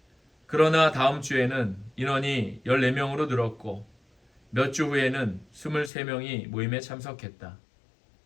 그러나 다음 주에는 인원이 14명으로 늘었고 몇 주 후에는 23명이 모임에 참석했다.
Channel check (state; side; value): drops out; right; at 5.9 s